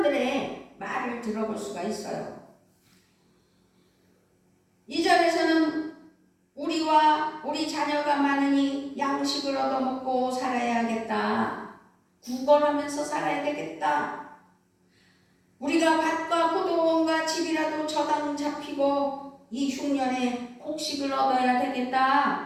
말을 들어볼 수가 있어요. 2절에서는 우리와 우리 자녀가 많으니 양식을 얻어먹고 살아야겠다. 구걸하면서 살아야 되겠다. 우리가 밭과 포도원과 집이라도 저당 잡히고 이 흉년에 곡식을 얻어야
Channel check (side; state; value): both; identical; correlation 1.00